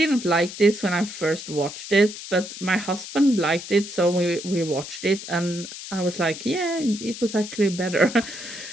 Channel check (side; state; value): left; noise; hiss, 11 dB below the sound